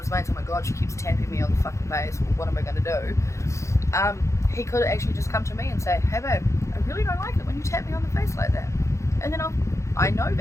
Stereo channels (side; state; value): right; late; 0.14 ms